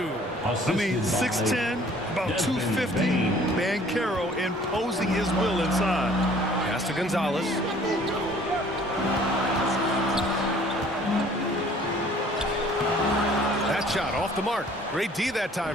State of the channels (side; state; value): both; normal; correlation 0.54